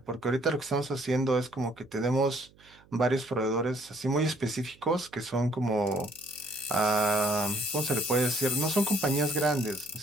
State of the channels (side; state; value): right; noise; hum, 28 dB below the sound